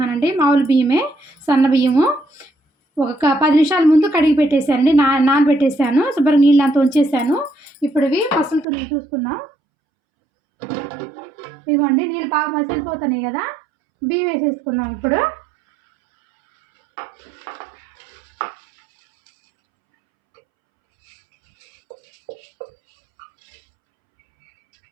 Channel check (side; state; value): left; drops out; at 8.7 s